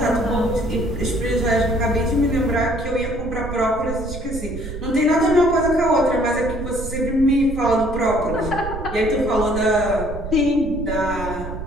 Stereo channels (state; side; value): noise; right; rumble, 8 dB below the sound